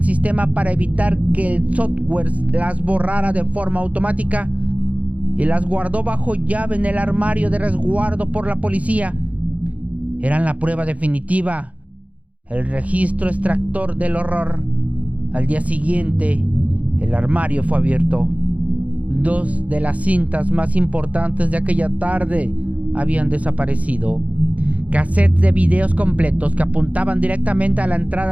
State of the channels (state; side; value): late; left; 0.068 ms